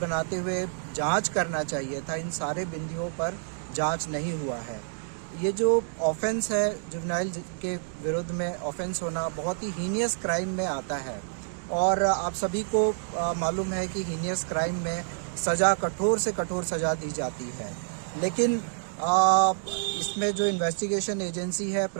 बनाते हुए जांच करना चाहिए था, इन सारे बिंदुओं पर जांच नहीं हुआ है। ये जो ऑफेंस है जुवेनाइल के विरुद्ध में ऑफेंस होना बहुत ही हीनियस क्राइम में आता है और आप सभी को मालूम है कि हीनियस क्राइम में सज़ा कठोर से कठोर सज़ा दी जाती है। लेकिन इसमें जो इन्वेस्टिगेशन एजेंसी है,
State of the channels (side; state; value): left; silent; digital silence